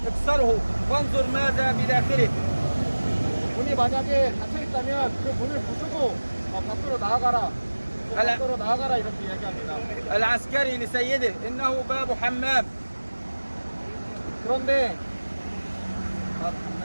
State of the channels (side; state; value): both; inverted; correlation -1.00